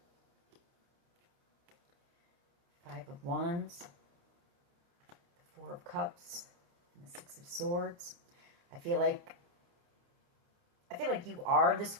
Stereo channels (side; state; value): left; late; 29 ms